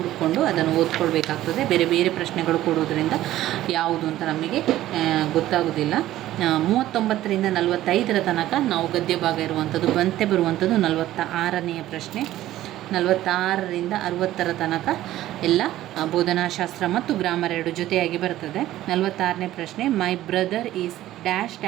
ಅದನ್ನು ಓದ್ಕೊಳ್ಬೇಕಾಗ್ತದೆ. ಬೇರೆ ಬೇರೆ ಪ್ರಶ್ನೆಗಳು ಕೊಡೋದ್ರಿಂದ ಯಾವುದು ಅಂತ ನಮಗೆ ಗೊತ್ತಾಗೋದಿಲ್ಲ. 39ರಿಂದ 45ರ ತನಕ ನಾವು ಗದ್ಯ ಭಾಗ ಇರುವಂಥದ್ದು. ಬಂತೆ ಬರುವಂಥದ್ದು 46ನೇ ಪ್ರಶ್ನೆ. 46ರಿಂದ 60ರ ತನಕ ಎಲ್ಲ ಬೋಧನಾಶಾಸ್ತ್ರ ಮತ್ತು ಗ್ರಾಮರ್ ಎರಡು ಜೊತೆಯಾಗಿ ಬರ್ತದೆ. 46ನೇ ಪ್ರಶ್ನೆ, my brother is dash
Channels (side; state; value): left; quieter; 14.3 dB